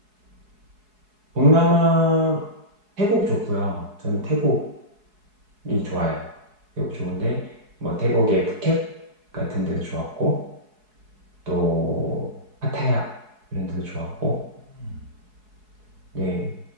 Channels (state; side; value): late; left; 4.7 ms